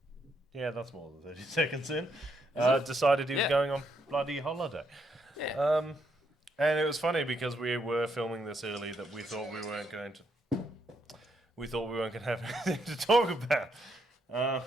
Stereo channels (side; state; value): both; normal; correlation 0.76